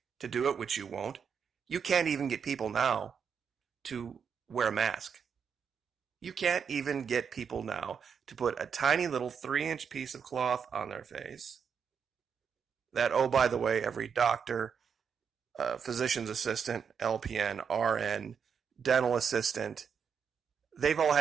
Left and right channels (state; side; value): quieter; left; 6.8 dB